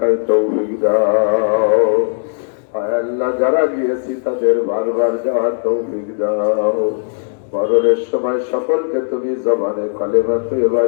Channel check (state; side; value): silent; right; digital silence